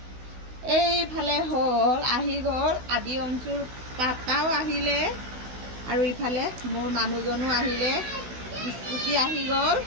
এইফালে আহি গ'ল আদি অঞ্চুৰ পাপাও আহিলে আৰু ইফালে মোৰ মানুহজনো আহিলে, স্কুটি আহি গ'ল।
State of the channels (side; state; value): left; late; 16 ms